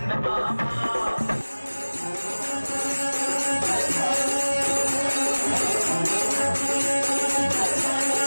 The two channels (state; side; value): inverted; both; correlation -1.00